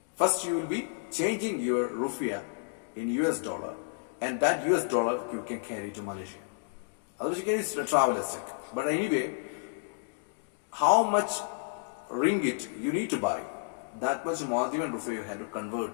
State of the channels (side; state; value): right; silent; digital silence